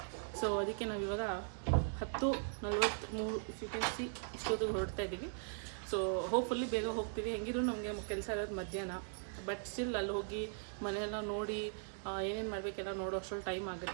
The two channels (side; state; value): left; silent; digital silence